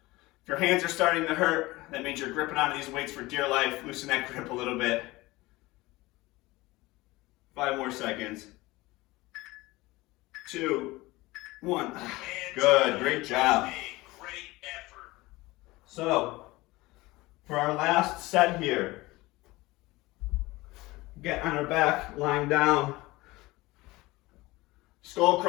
If your hands are starting to hurt, that means you're gripping onto these weights for dear life. Loosen that grip a little bit. 5 more seconds. 2, 1. Good, great job. So, for our last set here, get on our back, lying down. Skull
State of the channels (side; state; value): right; quieter; 20.5 dB